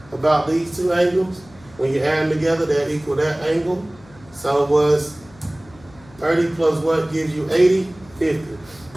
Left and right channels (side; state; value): left; noise; hum, 25 dB below the sound